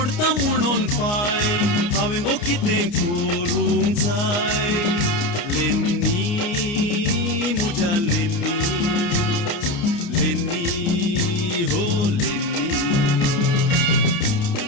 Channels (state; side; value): late; right; 29 ms